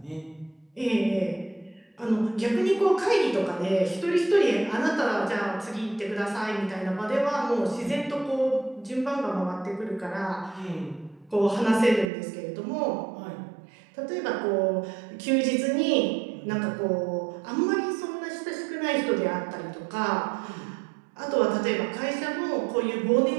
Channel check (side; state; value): left; drops out; at 12.1 s